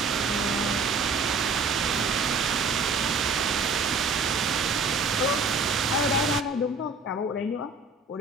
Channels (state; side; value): quieter; left; 3.8 dB